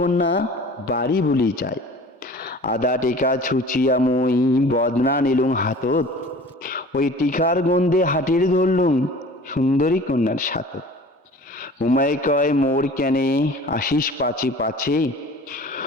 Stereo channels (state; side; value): normal; both; correlation 0.43